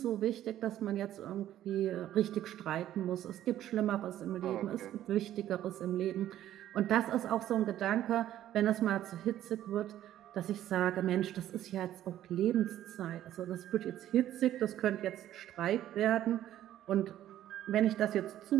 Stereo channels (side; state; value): left; quieter; 12.4 dB